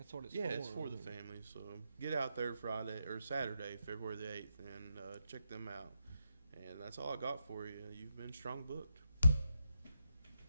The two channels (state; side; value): inverted; both; correlation -0.84